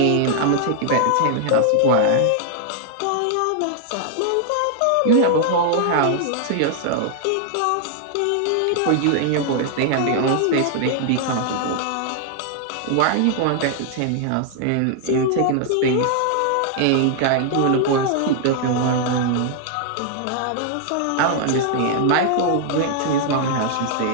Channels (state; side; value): different; both; correlation 0.00